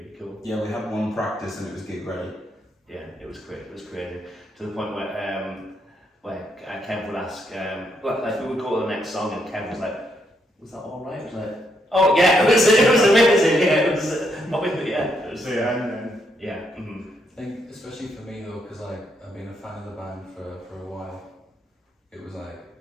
cool. Yeah, we had one practice and it was gig ready. Yeah, it was great. It was crazy to the point where Kev would ask, we would go to the next song, and Kev was like, "Was that all right?" I was like, "Oh yeah, it was amazing. Yeah, it was yeah." Mm-hmm. I think, especially for me though, because I've been a fan of the band for a while. It was like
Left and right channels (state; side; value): normal; both; correlation 0.76